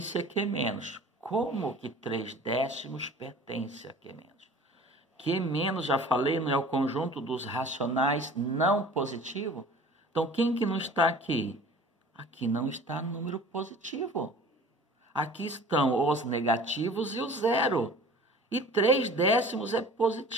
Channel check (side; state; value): both; normal; correlation 0.44